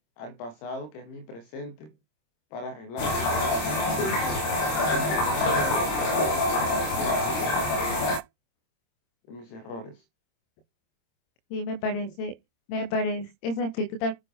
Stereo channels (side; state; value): right; late; 26 ms